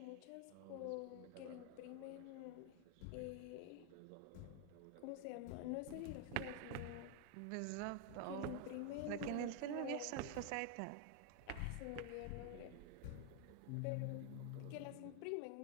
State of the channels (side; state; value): both; different; correlation 0.00